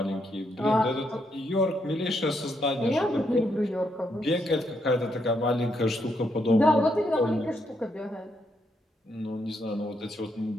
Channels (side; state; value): both; normal; correlation 0.77